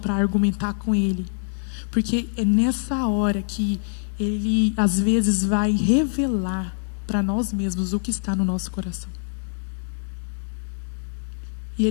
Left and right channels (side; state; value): right; silent; digital silence